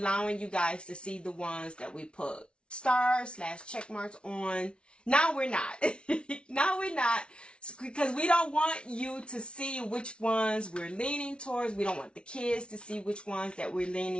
you guys to see the ones that we put stars / check marks on. Now we're not. Now we're not. Because we don't want you to see which ones we're leaning towards. We don't want the kids to see which ones that we're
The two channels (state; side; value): late; right; 0.058 ms